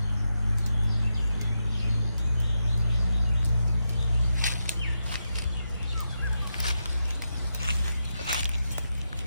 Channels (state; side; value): inverted; both; correlation -0.85